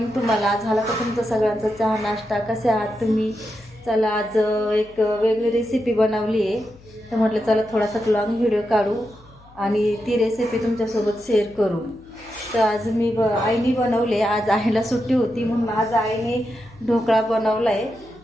तुम्हाला. झाला का तुमचं सगळ्यांचा चहा नाश्ता? कसे आहात तुम्ही? चला, आज एक वेगळी रेसिपी बनवली आहे, तर म्हटलं चला थोडासा लॉंग व्हिडिओ काढू आणि ती रेसिपी तुमच्यासोबत शेअर करू. तर आज आईने बनवले. आज आईला सुट्टी होती म्हणून आज आईने ढोकळा बनवला आहे.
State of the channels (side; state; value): left; noise; hum, 25 dB below the sound